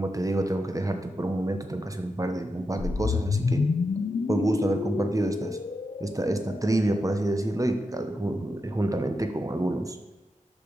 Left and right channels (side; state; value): both; normal; correlation 0.87